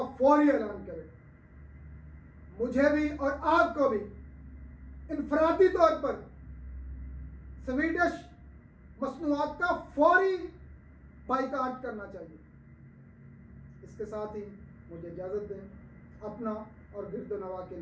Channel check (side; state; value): both; identical; correlation 1.00